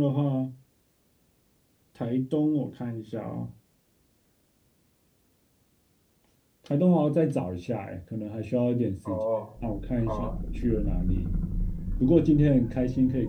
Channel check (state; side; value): identical; both; correlation 1.00